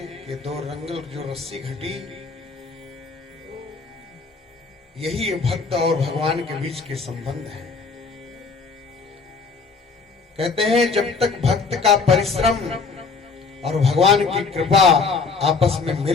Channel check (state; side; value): quieter; right; 4.6 dB